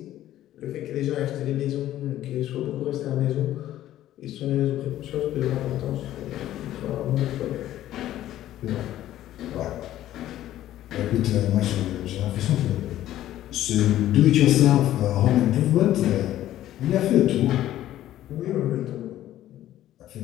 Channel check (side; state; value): right; quieter; 13.3 dB